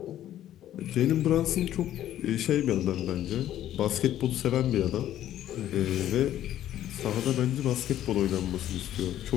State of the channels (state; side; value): quieter; right; 12.2 dB